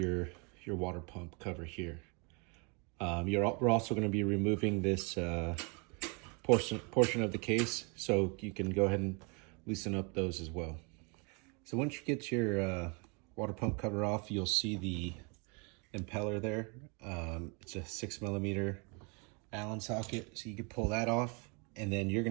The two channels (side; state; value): left; quieter; 32.9 dB